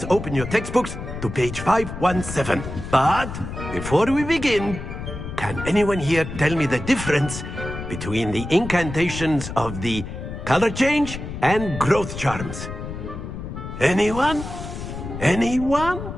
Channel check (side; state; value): left; noise; rumble, 8 dB below the sound